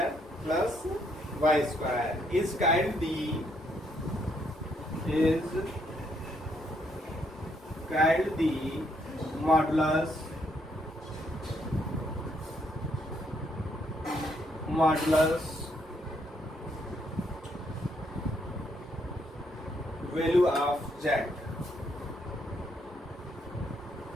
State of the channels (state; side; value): normal; both; correlation 0.73